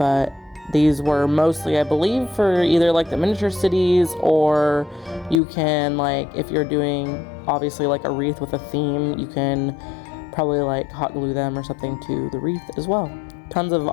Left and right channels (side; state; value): right; drops out; at 5.4 s